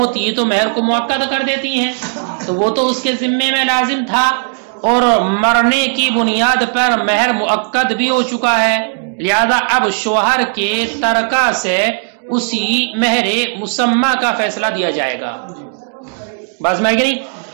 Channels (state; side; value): silent; left; digital silence